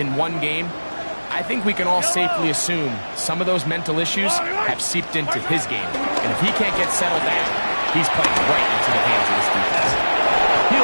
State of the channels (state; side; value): inverted; both; correlation -1.00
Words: one game, I think we can all safely assume some of those mental issues have seeped into his game. And if he can't get settled down, he's playing right into the hands of this defense.